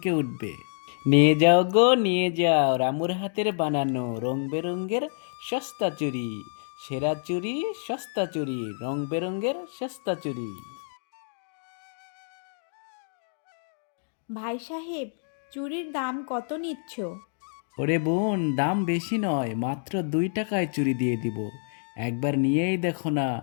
উঠবে। নিয়ে যাও গো নিয়ে যাও রামুর হাতের বানানো রং বেরঙের সস্তা চুড়ি, সেরা চুড়ি সস্তা চুড়ি, রং বেরঙের সস্তা চুড়ি। ভাই সাহেব, চুড়ির দাম কত নিচ্ছ? ওরে বোন, দাম বেশি নয়, মাত্র 2 টাকায় চুড়ি দিয়ে দিব। একবার নিয়েই দেখো না,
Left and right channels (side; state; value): right; silent; digital silence